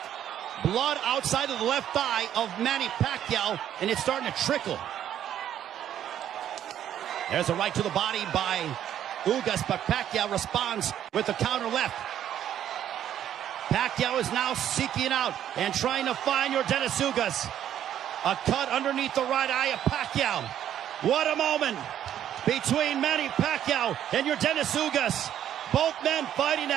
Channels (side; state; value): left; quieter; 10.6 dB